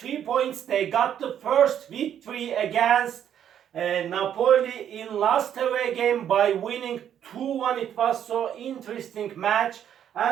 points. They got the first victory against Napoli in last away game by winning 2-1. It was so interesting match.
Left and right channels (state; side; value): quieter; left; 9.6 dB